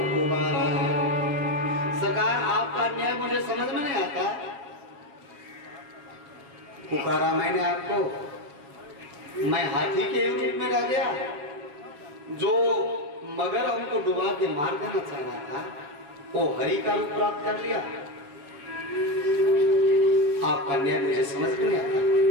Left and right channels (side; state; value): left; late; 7.1 ms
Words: उबारा है। सरकार आपका न्याय मुझे समझ में नहीं आता। पुकारा मैंने आपको, मैं हाथी के रूप में रह गया। जो मगर हमको डुबा के मार देना चाह रहा था, वो हरि का रूप प्राप्त कर लिया। आपका न्याय मुझे समझ में नहीं आता।